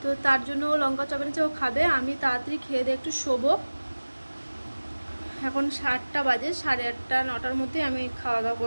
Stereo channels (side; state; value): both; inverted; correlation -1.00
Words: তো তার জন্য ও লঙ্কার চপ এনেছে, ও খাবে। আমি তাড়াতাড়ি খেয়ে দিয়ে একটু শোবো। এখন 7টা বাজে, 8:30 9টার মধ্যে আমি খাওয়া দাওয়া